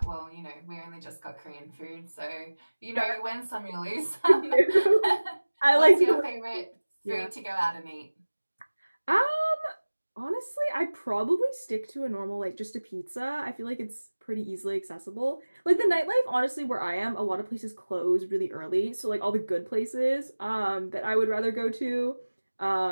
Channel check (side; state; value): both; inverted; correlation -1.00